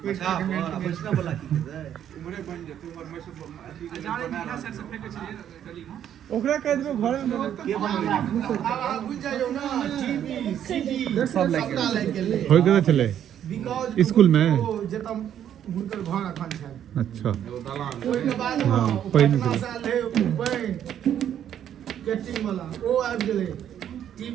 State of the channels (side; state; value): left; quieter; 10.0 dB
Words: अच्छा बचना बोला की उमरे बन जे तू और मैसूर बना सर से फेंके छी गली में ओकरा कह देबो घर में के बन बुझ जाइयो ना टीवी सीडी सब लाग गेल होय के चले स्कूल में जतम हुनकर घर अखन छै अच्छा ओइ के बाद हां पहिने साल है बन कैटिंग वाला ओ आबि गेलै